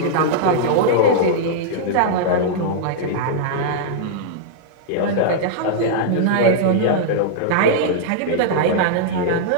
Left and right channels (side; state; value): both; different; correlation -0.02